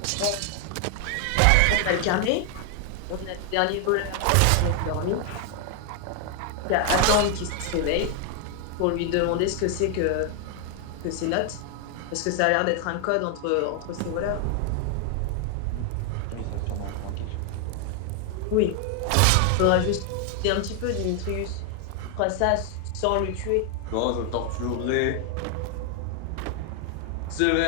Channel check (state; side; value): different; both; correlation 0.00